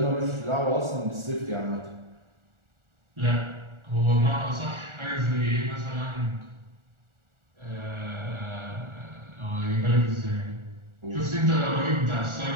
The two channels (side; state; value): left; late; 1.4 ms